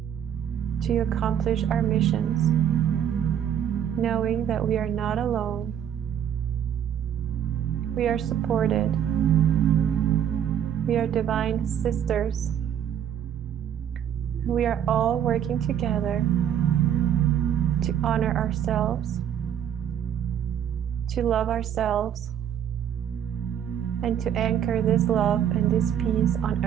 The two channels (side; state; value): left; quieter; 9.4 dB